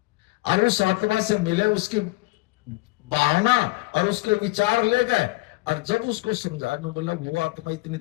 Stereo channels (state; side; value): quieter; right; 22.7 dB